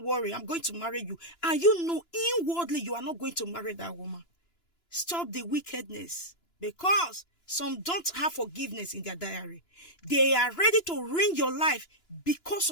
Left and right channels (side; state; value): right; late; 2.9 ms